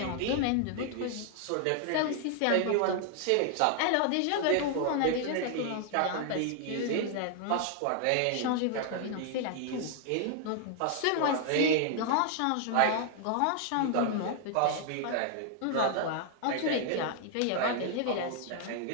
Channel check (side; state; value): both; different; correlation 0.00